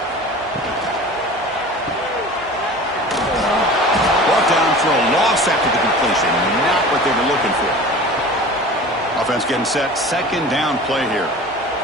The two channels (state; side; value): normal; both; correlation 0.38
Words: Brought down for a loss after the completion. Not what they were looking for. Offense getting set. Second down play here.